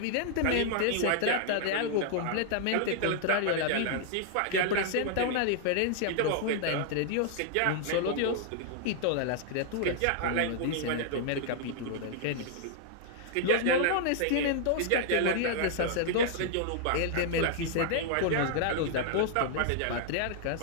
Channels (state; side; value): different; both; correlation -0.01